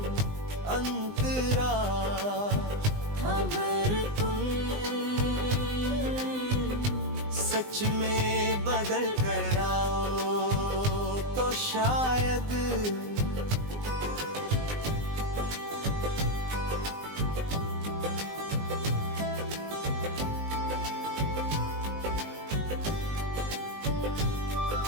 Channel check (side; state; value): left; late; 19 ms